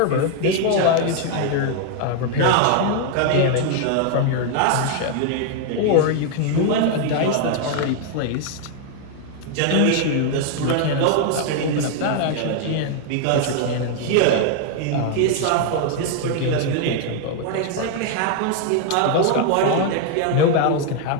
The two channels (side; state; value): both; different; correlation 0.00